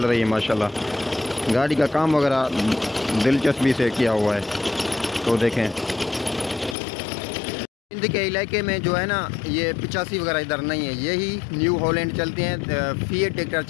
रही है माशाल्लाह। गाड़ी का काम वगैरह दिलचस्पी से किया हुआ है। तो देखें सिंध के इलाके में जो है ना, ये 85 वगैरह इधर नहीं है, यही न्यू हॉलैंड चलते हैं, फीएट ट्रैक्टर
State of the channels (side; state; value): right; drops out; at 6.8 s